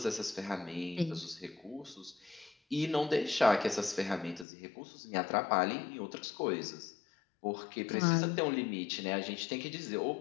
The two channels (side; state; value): right; drops out; at 4.5 s